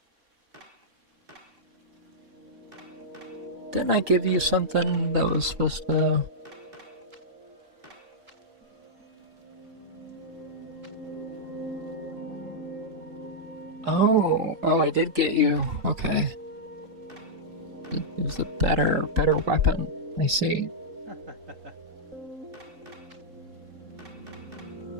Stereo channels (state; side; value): late; left; 3.8 ms